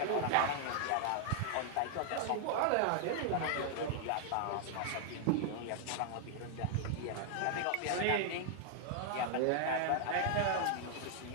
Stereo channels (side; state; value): both; different; correlation 0.00